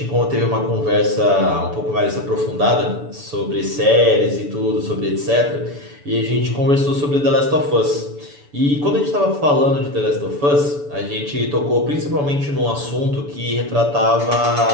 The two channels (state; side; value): late; left; 7.0 ms